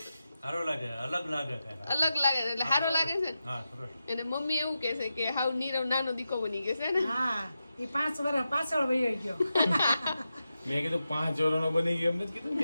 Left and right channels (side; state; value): both; inverted; correlation -0.90